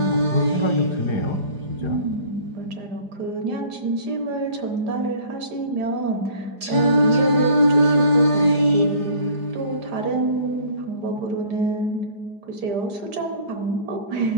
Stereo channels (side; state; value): left; late; 4.9 ms